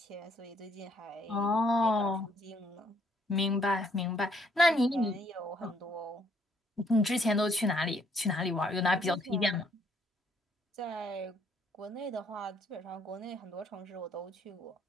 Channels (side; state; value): both; normal; correlation 0.67